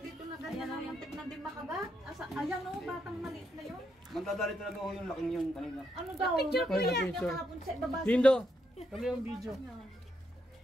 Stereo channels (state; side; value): normal; both; correlation 0.78